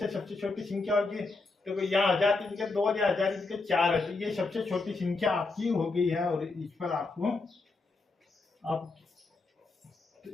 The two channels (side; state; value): right; quieter; 3.7 dB